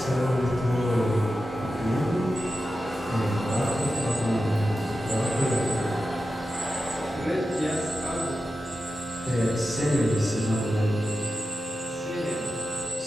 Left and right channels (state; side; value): normal; both; correlation 0.92